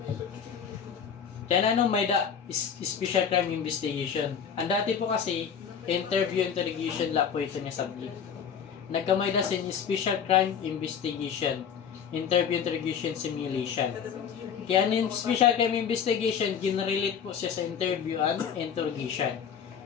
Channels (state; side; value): quieter; right; 7.5 dB